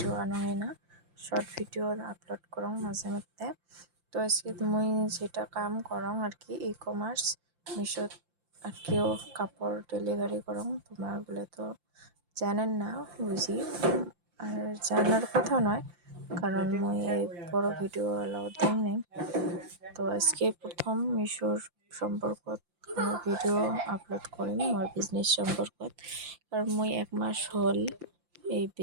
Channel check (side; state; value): left; late; 5.8 ms